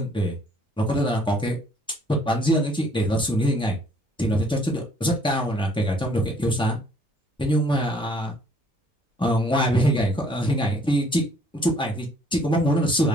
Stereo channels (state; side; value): normal; both; correlation 0.61